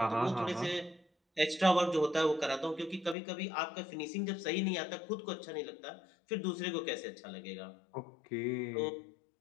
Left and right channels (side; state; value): right; drops out; at 3.2 s